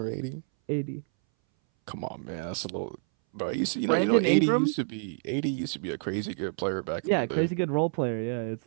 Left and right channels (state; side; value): silent; left; 59 dB below the other